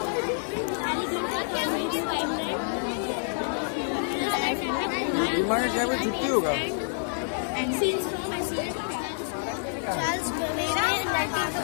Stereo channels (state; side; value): silent; right; digital silence